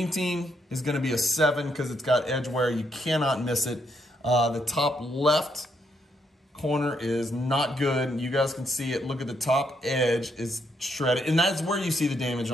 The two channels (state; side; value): normal; both; correlation 0.76